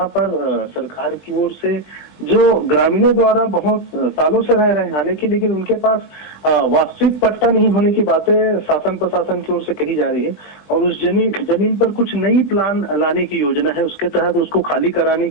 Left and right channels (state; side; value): late; right; 15 ms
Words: पर सरकार की ओर से जो ग्रामीणों द्वारा बहुत सालों से रह रहे हैं, हालांकि लेकिन उनके पास वास्तविक पट्टा नहीं होने की बातें शासन प्रशासन की ओर से कही जा रही है। और उस जमीन पर कुछ नई प्लान लाने की योजना है, उसके तहत उसको खाली कराने